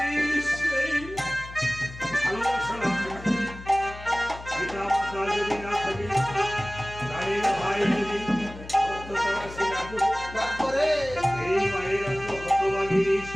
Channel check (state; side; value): noise; left; hum, 14 dB below the sound